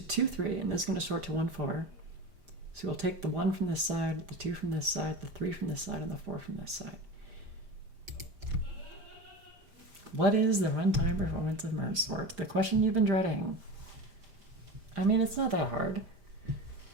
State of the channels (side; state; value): left; late; 5.0 ms